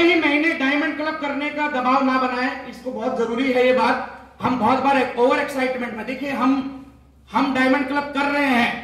महीने डायमंड क्लब करने का दबाव ना बनाएं, इसको बहुत जरूरी है ये बात। हम बहुत बार ओवर एक्साइटमेंट में, देखिए हम डायमंड क्लब कर रहे हैं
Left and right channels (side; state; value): both; identical; correlation 1.00